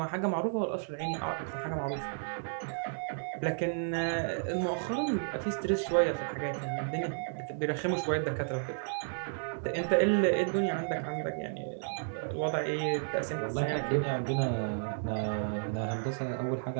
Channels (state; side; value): silent; left; digital silence